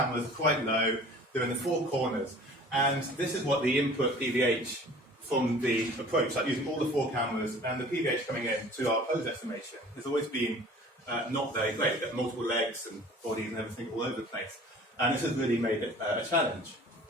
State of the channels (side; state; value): both; normal; correlation 0.47